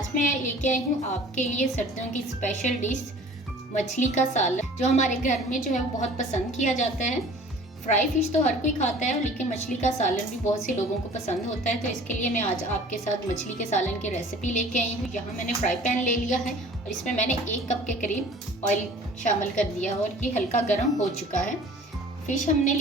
मैं लेके आई हूँ आपके लिए सर्दियों की स्पेशल डिश मछली का सालन, जो हमारे घर में जो है वो बहुत पसंद किया जाता है। फ्राई फिश तो हर कोई खाता है, लेकिन मछली का सालन भी बहुत से लोगों को पसंद होता है। तो इसके लिए मैं आज आपके साथ मछली के सालन की रेसिपी लेके आई हूँ। यहाँ मैंने फ्राई पैन ले लिया है और इसमें मैंने 1 कप के करीब ऑयल शामिल कर दिया और ये हल्का गर्म हो चुका है। फिश हमने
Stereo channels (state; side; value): normal; both; correlation 0.47